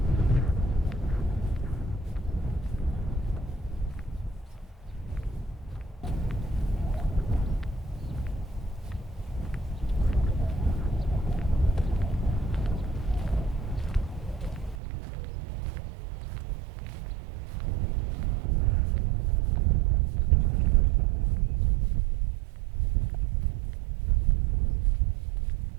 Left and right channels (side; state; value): left; drops out; at 14.8 s